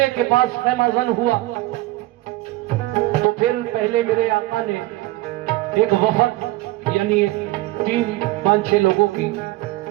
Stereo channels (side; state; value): left; quieter; 18.4 dB